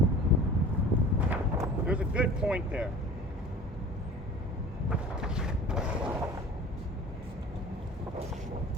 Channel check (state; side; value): normal; both; correlation 0.42